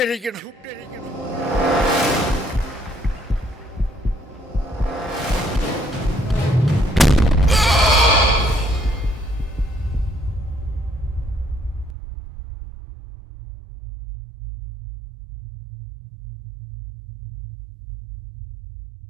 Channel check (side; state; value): left; drops out; at 11.9 s